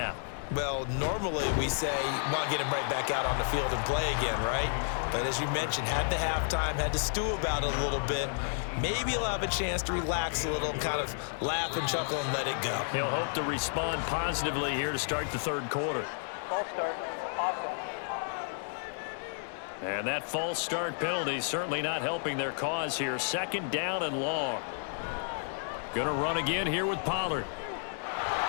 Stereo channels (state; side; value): silent; right; digital silence